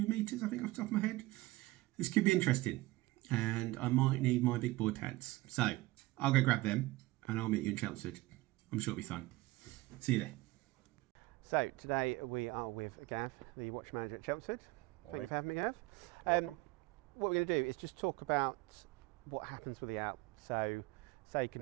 metres, I think, off the top of my head, this could be interesting, and I might need my big boy pads. So I'll go grab them and I'll meet you in Chelmsford. I'm sure it'll be fun. See you there. So today we are with Gav, the watch manager at Chelmsford. Thank you for having me, Gav. Welcome. What we're going to do is just talk about what happens with the ALP. So say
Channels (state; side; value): quieter; left; 19.6 dB